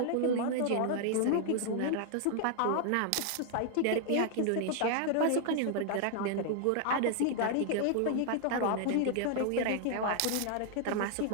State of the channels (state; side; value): different; both; correlation 0.00